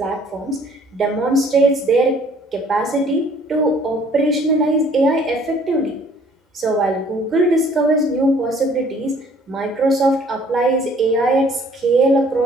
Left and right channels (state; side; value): normal; both; correlation 0.57